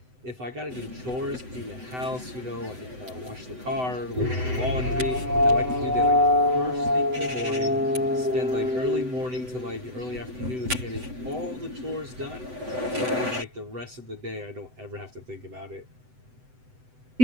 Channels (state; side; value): late; left; 7.9 ms